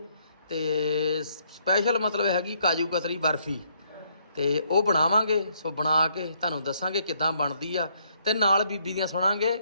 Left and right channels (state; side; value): inverted; both; correlation -0.70